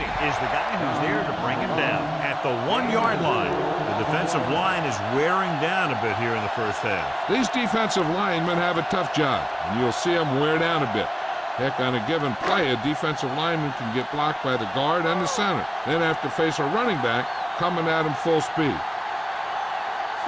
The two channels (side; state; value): both; identical; correlation 1.00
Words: is the guy who's there to bring him down. At the 1-yard line, the defensive line is wearing down a bit here in the first half. These defensive linemen have a tough job, and you'll see them wear down a bit. Heck, on a given play, a defensive lineman can get blocked by the guard and the center, then have to face a running back coming at him full speed.